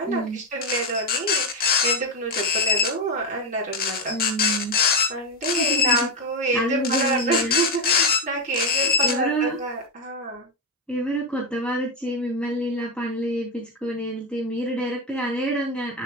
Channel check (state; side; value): normal; both; correlation 0.09